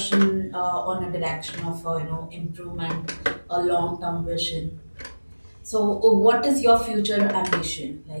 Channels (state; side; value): inverted; both; correlation -1.00